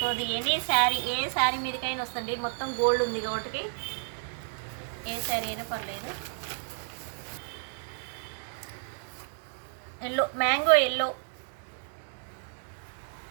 ఎనీ శారీ, ఏ శారీ మీదకైనా వస్తుంది, మొత్తం గోల్డ్ ఉంది కాబట్టి ఏ శారీ అయినా పర్లేదు. Yellow, mango yellow.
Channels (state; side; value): silent; left; 57 dB below the other